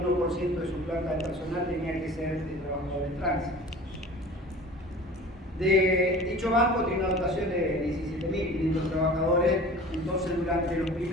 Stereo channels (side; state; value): both; normal; correlation 0.41